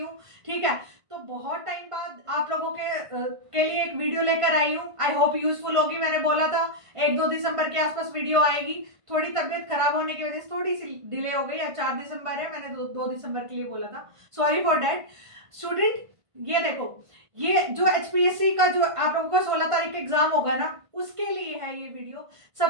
ठीक है, तो बहुत टाइम बाद आप लोगों के लिए एक वीडियो लेकर आई हूँ। आई होप यूजफुल होगी। मैंने बोला था 1-2 दिसंबर के आसपास वीडियो आएगी। थोड़ी तबीयत खराब होने की वजह से थोड़ी सी डिले हो गई। आज 4 दिसंबर है, मैंने 2 दिसंबर के लिए बोला था, सॉरी फॉर डैट। स्टूडेंट ये देखो, ये जो एचपीएससी का जो आप लोगों का 16 तारीख एग्जाम होगा ना, उसके लिए है ये वीडियो।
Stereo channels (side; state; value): left; late; 1.5 ms